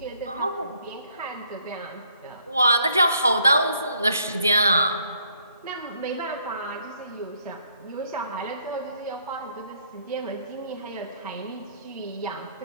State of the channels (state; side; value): inverted; both; correlation -0.68